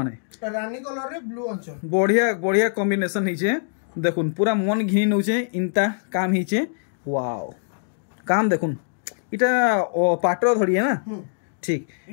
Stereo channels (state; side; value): silent; right; digital silence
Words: माने रानी कलर रे ब्लू अंचल बढ़िया कॉम्बिनेशन होइछे देखुन पूरा मन घिनी नउछे इनता काम होइछे वाओ काम देखुन इटा पाटर धड़ी है ना ठीक